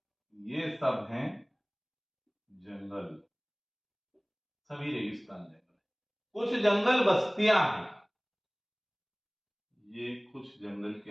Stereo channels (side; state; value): both; identical; correlation 1.00